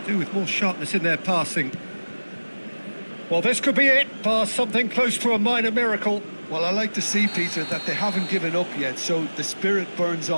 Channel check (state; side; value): inverted; both; correlation -1.00